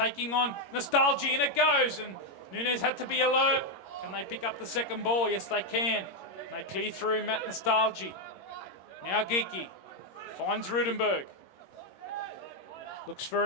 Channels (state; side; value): late; right; 21 ms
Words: on Nostalgia, and it goes, and Nunez had to be alert. Can they pick up the second ball? Yes, they can. They clear through Matt Nostalgia. Now Geeky finds Rudenberg. Looks for